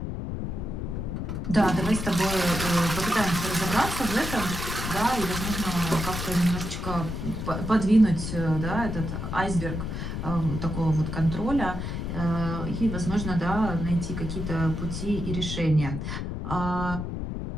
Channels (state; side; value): noise; left; rumble, 4 dB below the sound